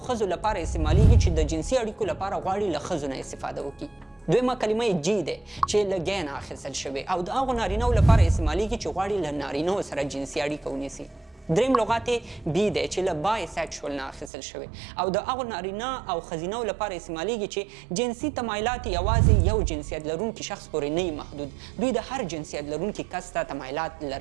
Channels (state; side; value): drops out; left; at 14.3 s